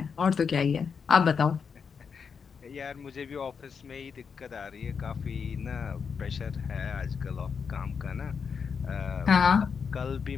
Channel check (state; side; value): quieter; right; 6.1 dB